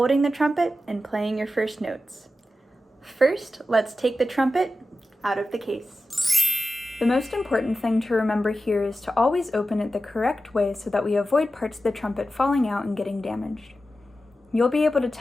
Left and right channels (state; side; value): normal; both; correlation 0.92